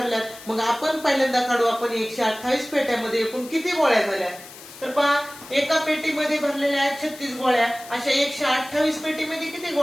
मग आपण पहिल्यांदा काढू आपण 128 पेट्यामध्ये एकूण किती गोळ्या झाल्या. तर पहा एका पेटीमध्ये भरलेल्या आहेत 36 गोळ्या. अशा 128 पेटीमध्ये किती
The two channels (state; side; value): noise; left; hiss, 17 dB below the sound